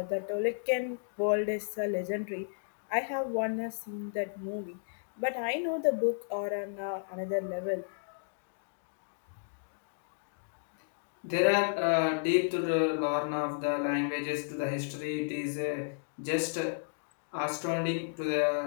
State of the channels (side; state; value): right; silent; digital silence